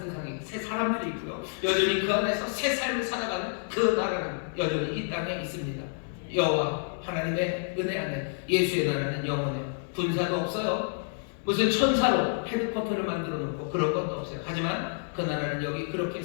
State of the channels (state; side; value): silent; right; digital silence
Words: 새 사람들이 있고요. 여전히 그 안에서 새 삶을 살아가는 그 나라는 여전히 이 땅에 있습니다. 여호와 하나님의 은혜 안에 예수의 나라는 영원해요. 군사도 없어요. 무슨 천사로 헤드쿼터를 만들어 놓고 그런 것도 없어요. 하지만 그 나라는 여기 그렇게